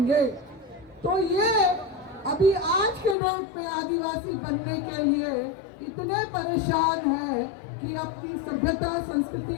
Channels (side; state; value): right; drops out; at 3.2 s